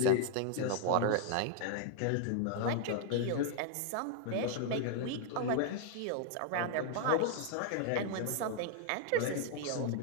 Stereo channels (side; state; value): both; different; correlation 0.00